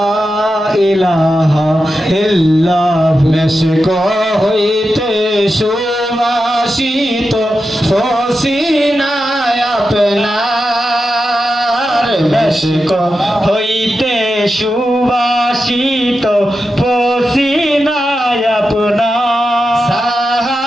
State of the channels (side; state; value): both; normal; correlation 0.90